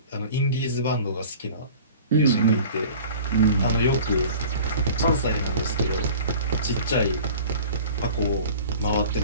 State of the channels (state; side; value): inverted; both; correlation -0.42